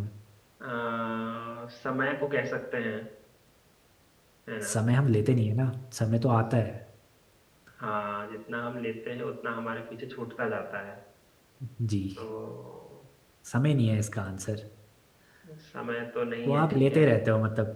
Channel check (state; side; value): identical; both; correlation 1.00